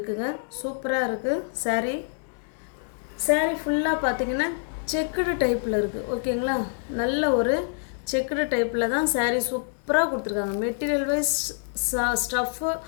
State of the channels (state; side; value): silent; right; 61 dB below the other